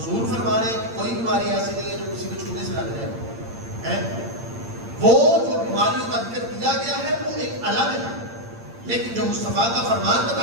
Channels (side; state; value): left; late; 8.7 ms